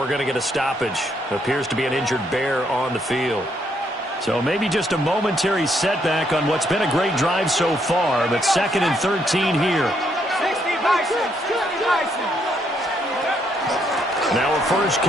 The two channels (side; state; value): both; normal; correlation 0.73